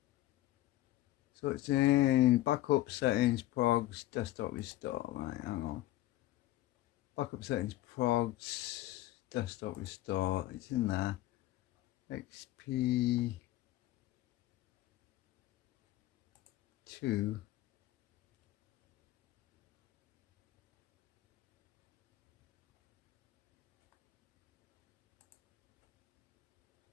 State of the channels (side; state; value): right; quieter; 15.7 dB